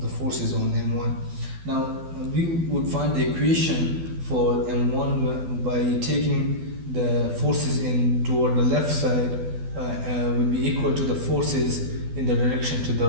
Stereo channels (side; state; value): left; late; 12 ms